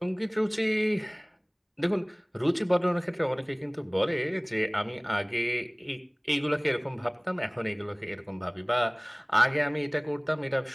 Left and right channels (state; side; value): identical; both; correlation 1.00